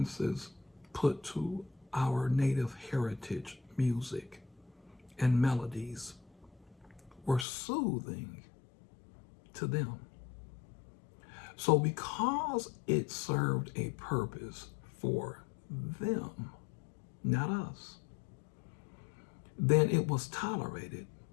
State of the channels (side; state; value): right; drops out; at 7.5 s